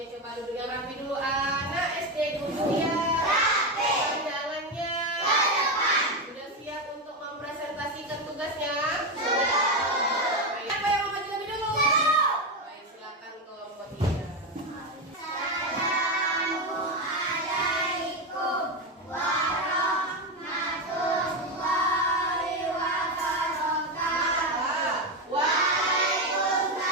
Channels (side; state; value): both; normal; correlation 0.12